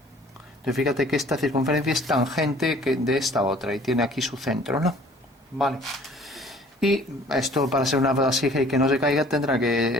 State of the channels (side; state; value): both; normal; correlation 0.53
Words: Entonces fíjate que esta circunferencia es tangente de esta otra y tiene aquí su centro, ¿no? Vale. Y esto, para ser una vasija y que no se caiga, tendrá